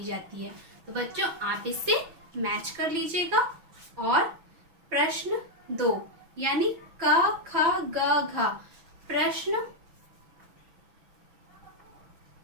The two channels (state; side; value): late; left; 6.1 ms